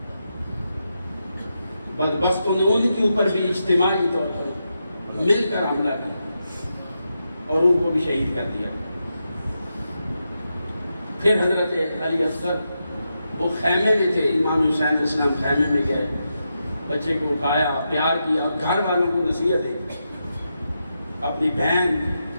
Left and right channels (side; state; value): both; inverted; correlation -0.86